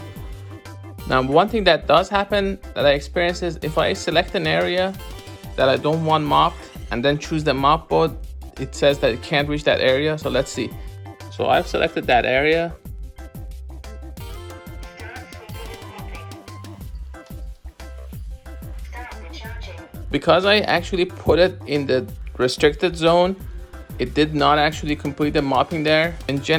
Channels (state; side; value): identical; both; correlation 1.00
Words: Now, one thing that does happen that I experience is if I select an area that I don't want mopped and then choose the mop mode, it says that it can't reach that area. So let's see. So I've selected that area. Because I actually put it in the restricted zone, it did not actually complete the mopping there. In